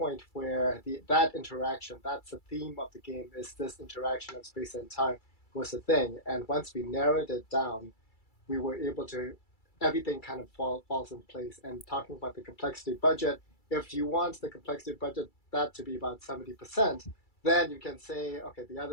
where that interaction, that's the theme of the game, is this interaction of space and time was a thing. And once we narrowed it down, we were able to, everything kind of falls in place. And talking about the complexity budget, if you want the complexity budget that to be about 70%, then you can say, okay, the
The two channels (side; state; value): right; late; 2.3 ms